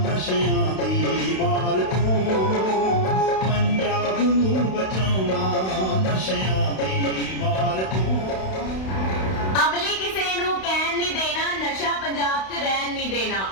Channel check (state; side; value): late; right; 32 ms